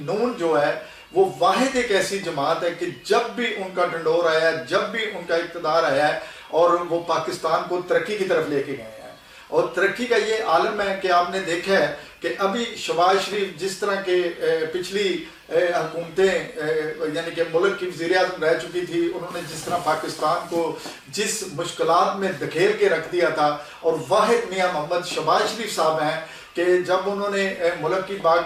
نون جو ہے وہ واحد ایک ایسی جماعت ہے کہ جب بھی ان کا ڈنڈور آیا ہے، جب بھی ان کا اقتدار آیا ہے، اور وہ پاکستان کو ترقی کی طرف لے کے گئے ہیں۔ اور ترقی کا یہ عالم ہے کہ آپ نے دیکھا ہے کہ ابھی شہباز شریف جس طرح کے پچھلی حکومتیں یعنی کہ ملک کی وزیر اعظم رہ چکی تھی، انہوں نے جس طرح پاکستان کو جس مشکلات میں دھکیل کے رکھ دیا تھا، اور واحد میاں محمد شہباز شریف صاحب ہیں کہ جب انہوں نے ملک کی باغ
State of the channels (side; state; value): both; identical; correlation 1.00